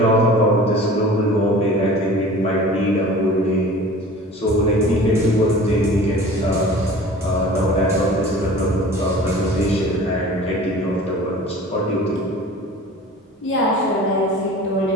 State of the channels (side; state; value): both; normal; correlation 0.42